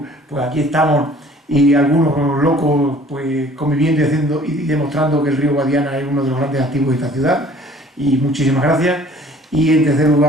pues aquí estamos y algunos locos pues conviviendo y haciendo y demostrando que el río Guadiana es uno de los grandes activos de esta ciudad. Y muchísimas gracias. Y en tercer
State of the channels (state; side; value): normal; both; correlation 0.53